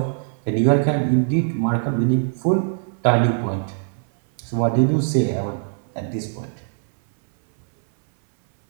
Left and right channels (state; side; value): silent; left; 62 dB below the other